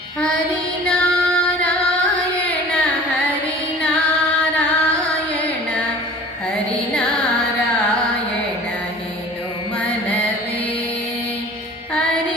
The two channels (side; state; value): both; normal; correlation 0.44